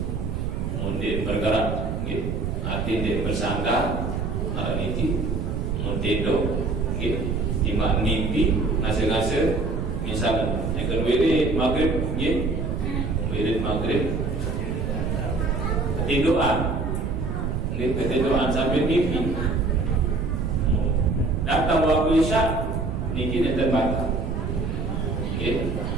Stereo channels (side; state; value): right; noise; rumble, 2 dB below the sound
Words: mungkin bergerak, nggih, arti dia bersandar, arah niti, mungkin nggih, timak mimpi, ngase-ngase, misalnya, yang kedua ini maghrib, nggih, wirid maghrib. Ketiduran sambil mimpi. Datang waktu isya, niki nanti batal.